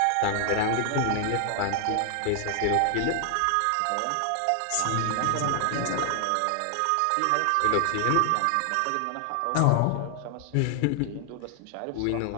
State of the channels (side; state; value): both; different; correlation 0.00